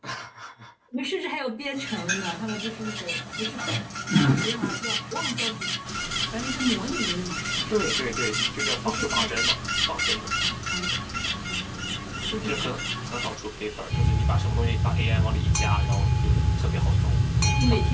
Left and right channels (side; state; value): both; identical; correlation 1.00